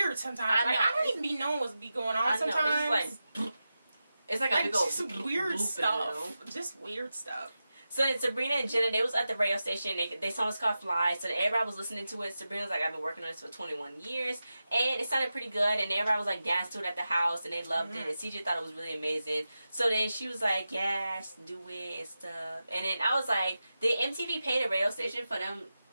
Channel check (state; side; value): inverted; both; correlation -0.92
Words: sometimes. I don't even be knowing what's be going on sometimes. It's like a big old just weird stuff. Just weird stuff. So then Sabrina and Jenna, they was at the radio station. They saw us called Fly. So then everybody was listening to it. Sabrina was like, I've been working on this for 21 years. And it sounded pretty good. And everybody was like dancing to it at the house. And they loved it. And CJ thought it was really amazing. So then she was like, yes, do it and stuff. And then I was like, did MTV pay the radio station for them